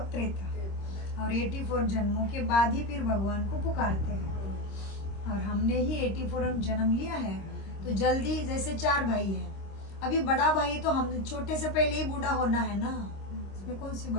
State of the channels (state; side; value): late; right; 26 ms